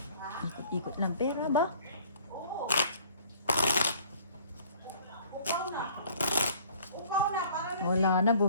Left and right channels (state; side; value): inverted; both; correlation -0.54